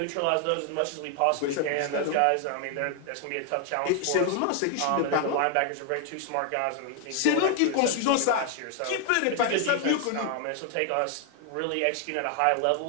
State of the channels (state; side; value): different; both; correlation 0.00